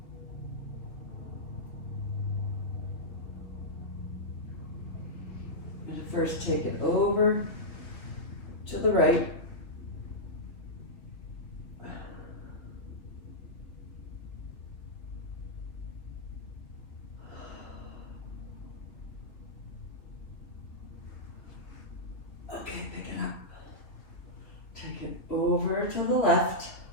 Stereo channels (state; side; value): late; right; 3.3 ms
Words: I'm going to first take it over to the right. Okay, pick it up. Take it over to the left.